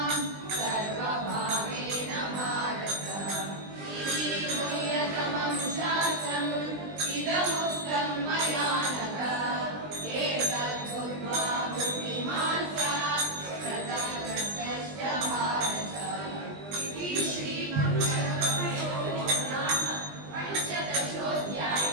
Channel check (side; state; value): left; late; 20 ms